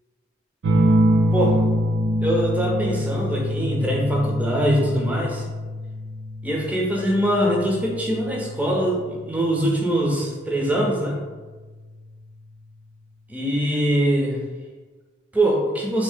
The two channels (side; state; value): both; normal; correlation 0.74